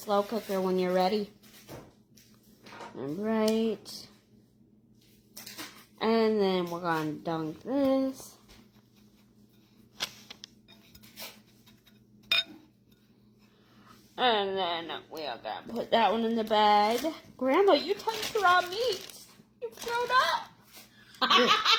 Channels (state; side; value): identical; both; correlation 1.00